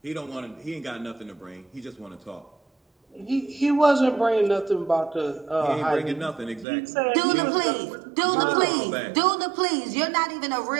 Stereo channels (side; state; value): left; drops out; at 6.7 s